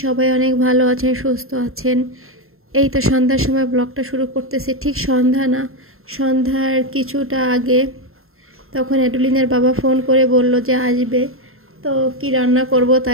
সবাই অনেক ভালো আছেন, সুস্থ আছেন। এই তো সন্ধ্যার সময় ব্লগটা শুরু করতেছি। ঠিক সন্ধ্যা না, সন্ধ্যার কিছুটা আগে তখন অ্যাডুলিনের বাবা ফোন করে বলল যে আসবে। তো কি রান্না করব,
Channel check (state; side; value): late; left; 0.61 ms